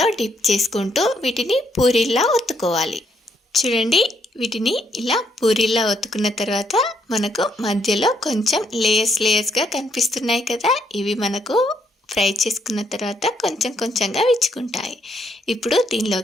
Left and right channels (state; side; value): normal; both; correlation 0.73